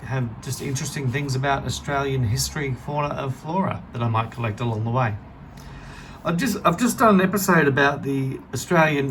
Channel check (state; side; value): identical; both; correlation 1.00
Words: have just interesting things about Australian history, fauna and flora that I might collect along the way. I've just done an episode about the Australian